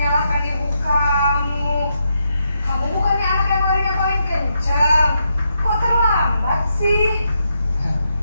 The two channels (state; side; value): inverted; both; correlation -0.81